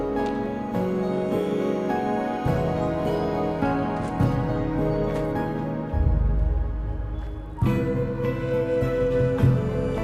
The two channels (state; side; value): identical; both; correlation 1.00